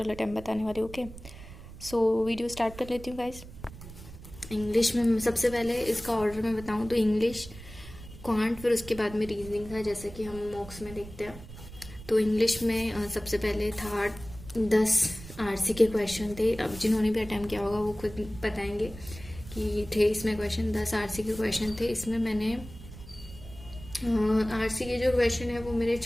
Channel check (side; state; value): right; noise; rumble, 15 dB below the sound